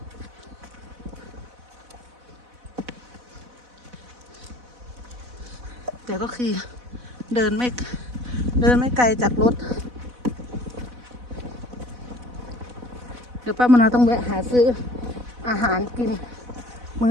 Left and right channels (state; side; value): late; left; 4.1 ms